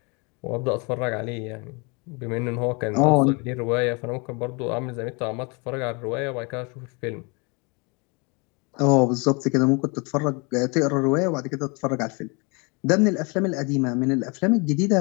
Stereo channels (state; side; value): quieter; right; 30.8 dB